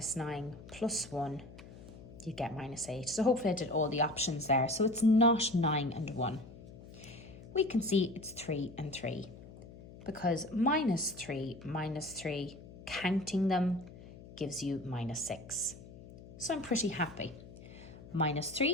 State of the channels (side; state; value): left; noise; hum, 17 dB below the sound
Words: 9 plus 1, you'd get minus 8. So hopefully I did all the options there. So it's not 9 and 1. We can see it's 3 and 3. Because minus 3, counting them gives you minus 6. So I'm pretty happy. Minus